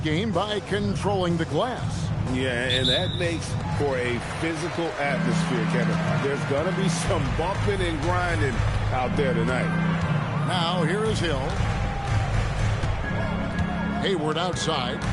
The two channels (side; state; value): both; identical; correlation 1.00